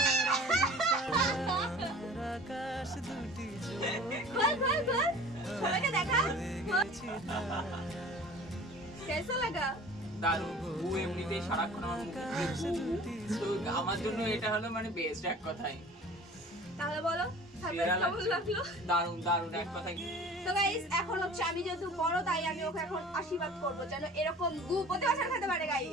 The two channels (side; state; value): both; normal; correlation 0.44